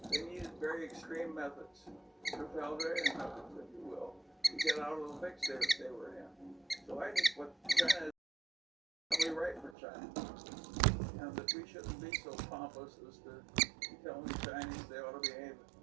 They needed very extreme methods, totalitarian methods, if you will, to get out of the fix they were in. So I think what China is probably right for China, and that we shouldn't be so pompous as to tell the Chinese they ought to behave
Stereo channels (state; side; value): drops out; left; at 9.8 s